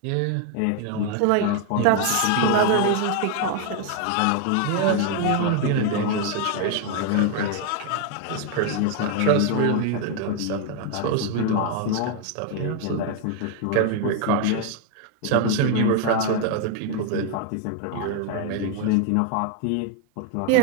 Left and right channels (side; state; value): both; different; correlation 0.01